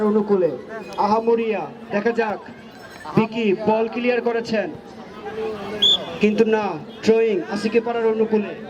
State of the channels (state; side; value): identical; both; correlation 1.00